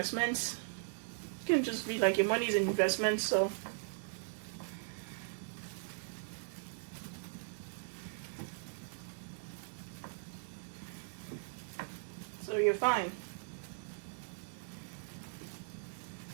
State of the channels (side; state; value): left; silent; digital silence